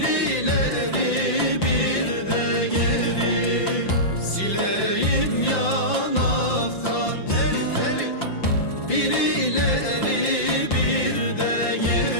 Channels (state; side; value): late; right; 5.8 ms